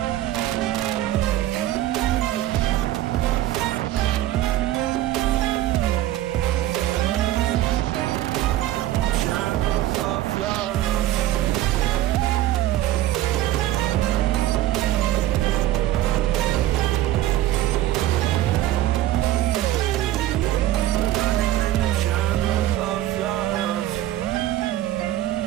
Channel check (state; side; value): quieter; left; 14.2 dB